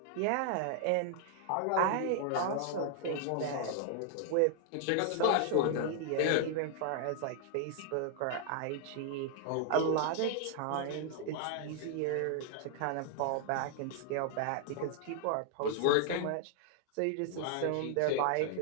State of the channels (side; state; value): both; different; correlation 0.00